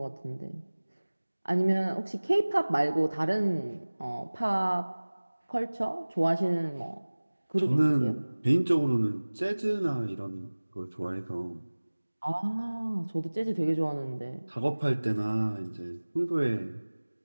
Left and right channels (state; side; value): inverted; both; correlation -1.00